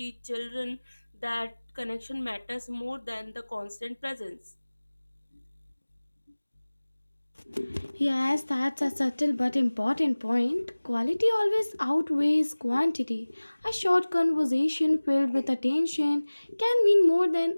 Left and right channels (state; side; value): inverted; both; correlation -1.00